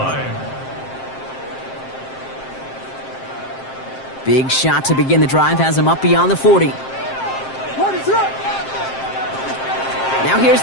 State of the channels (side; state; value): right; late; 7.6 ms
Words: Big shot to begin the drive has him up beyond the 40. Now here's